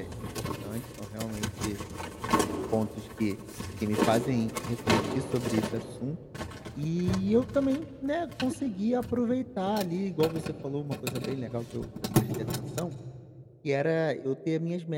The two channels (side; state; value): both; identical; correlation 1.00